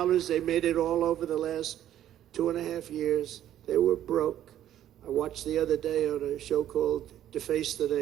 They made it all over the last 2.5 years. They were broke. I watched the other day on a show called Deface the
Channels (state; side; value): quieter; left; 11.7 dB